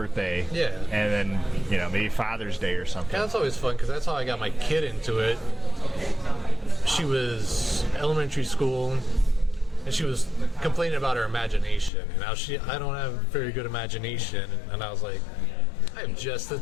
Yeah. And then, maybe Father's Day or something. Yeah, that's always fun because that's how I got my kid into it. She was elementary school and she was complaining about her imagination. And now I don't have very good imagination. And I was like, I have just the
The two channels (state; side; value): drops out; right; at 11.9 s